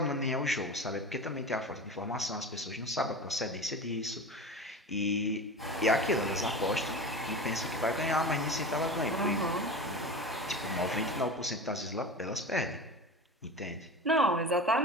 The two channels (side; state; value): both; normal; correlation 0.30